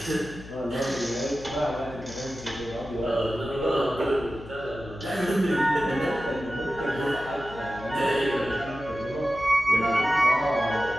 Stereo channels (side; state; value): left; noise; hum, 15 dB below the sound